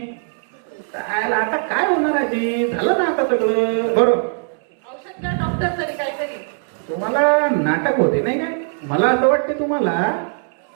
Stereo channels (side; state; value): left; silent; digital silence